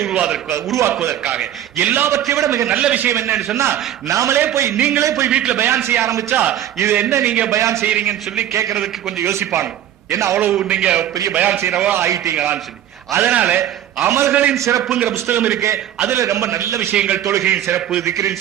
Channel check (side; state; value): left; quieter; 11.4 dB